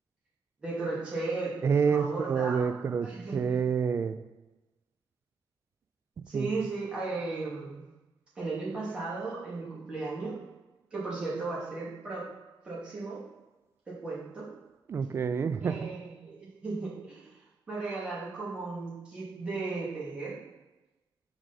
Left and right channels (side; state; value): left; quieter; 4.8 dB